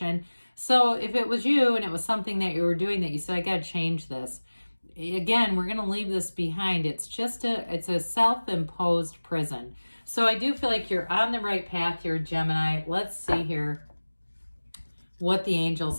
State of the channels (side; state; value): both; inverted; correlation -1.00